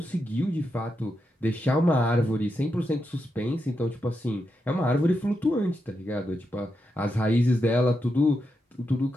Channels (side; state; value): both; normal; correlation 0.85